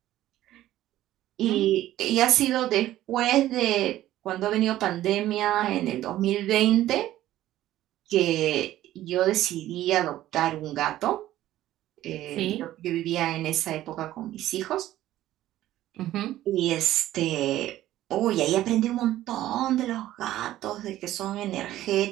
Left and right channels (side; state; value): left; quieter; 14.1 dB